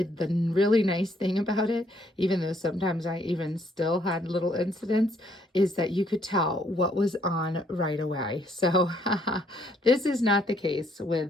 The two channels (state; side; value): normal; both; correlation 0.68